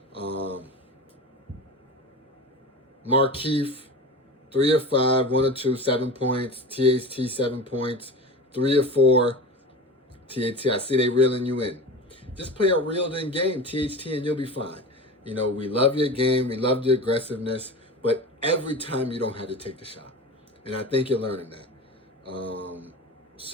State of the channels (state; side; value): normal; both; correlation 0.30